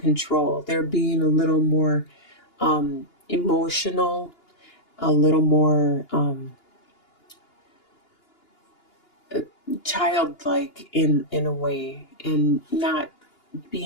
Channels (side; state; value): right; late; 2.9 ms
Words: They're being a little more emotional, a little more childlike in a way, and not